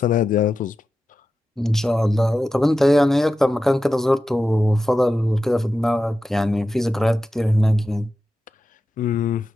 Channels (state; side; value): normal; both; correlation 0.91